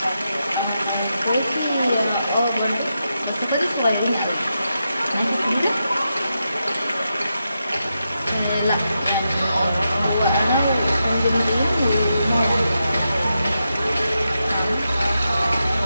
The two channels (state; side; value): inverted; both; correlation -0.87